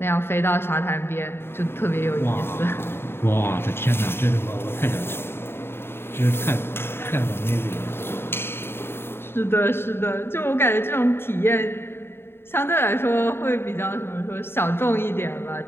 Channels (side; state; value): right; late; 0.11 ms